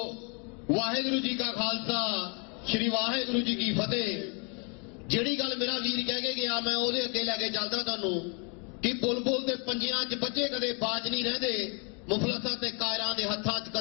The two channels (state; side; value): quieter; right; 36.2 dB